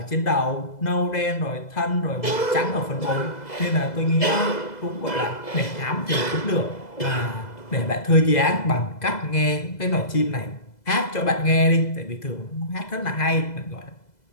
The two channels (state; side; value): late; right; 2.0 ms